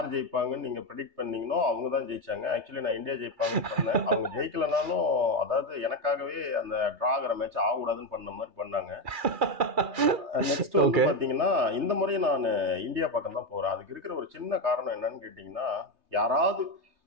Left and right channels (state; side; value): late; left; 2.4 ms